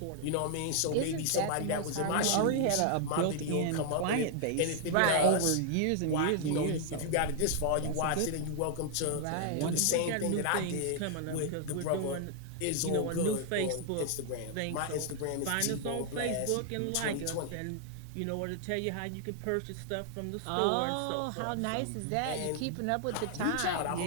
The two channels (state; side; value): different; both; correlation 0.00